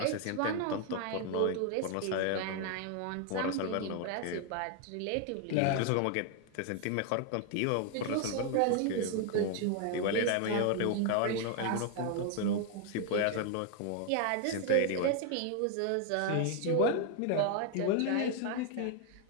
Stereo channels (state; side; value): different; both; correlation 0.00